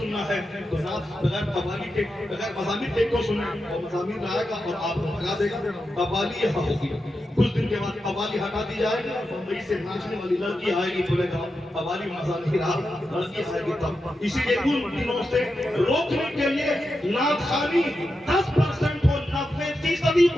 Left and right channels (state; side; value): normal; both; correlation 0.88